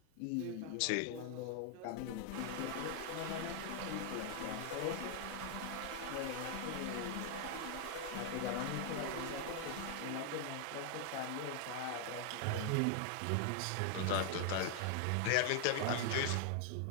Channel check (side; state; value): both; different; correlation 0.00